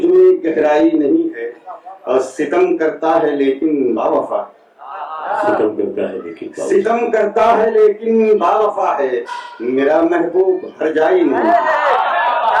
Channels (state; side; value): identical; both; correlation 1.00